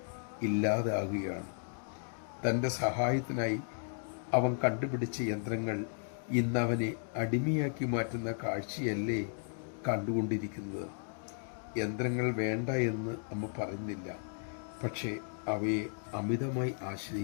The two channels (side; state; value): right; silent; digital silence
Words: ഇല്ലാതാകുകയാണ്. തൻ്റെ സഹായത്തിനായി അവൻ കണ്ടുപിടിച്ച യന്ത്രങ്ങൾ ഇന്നവനെ അടിമയാക്കി മാറ്റുന്ന കാഴ്ചയല്ലേ കണ്ടുകൊണ്ടിരിക്കുന്നത്. യന്ത്രങ്ങൾ വേണ്ട എന്ന് അമ്മ പറയുന്നില്ല, പക്ഷേ അവയെ അമിതമായി